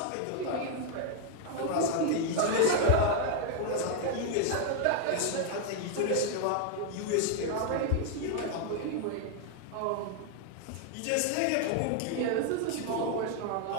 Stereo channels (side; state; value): both; different; correlation 0.00